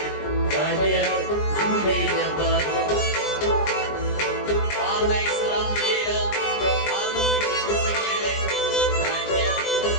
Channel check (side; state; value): right; late; 20 ms